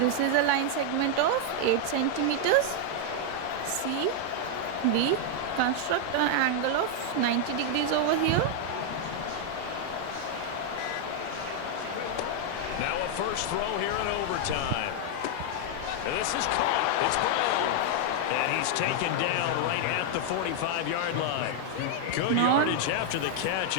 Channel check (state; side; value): different; both; correlation 0.00